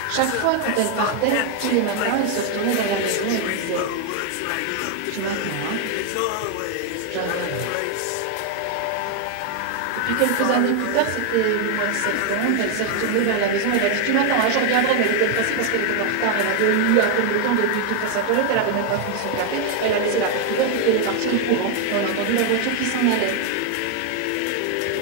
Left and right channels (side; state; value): both; different; correlation 0.01